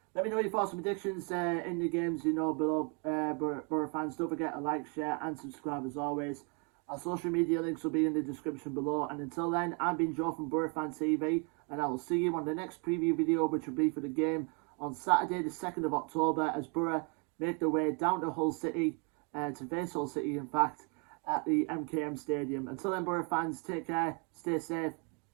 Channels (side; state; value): left; quieter; 34.9 dB